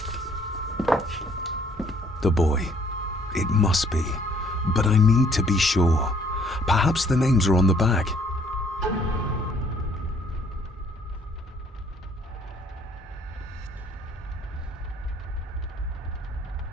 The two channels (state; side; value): normal; both; correlation 0.62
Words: The boy. It must be. But I need to be sure. Perhaps the names are on the bag.